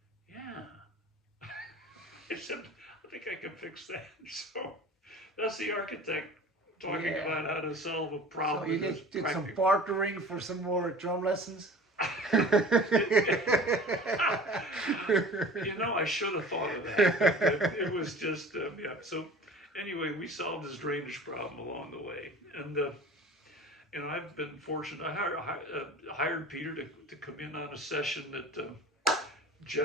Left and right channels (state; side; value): normal; both; correlation 0.41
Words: yeah. I said, I think I can fix that. So that's the architect talking about how to solve a problem. So you did some bartering for some more drum lessons? You know, I should have thought of that. It was just, yeah. So anyway, we solved his drainage problem along the way. And I've been fortunate. I hired Peter to come in on a session that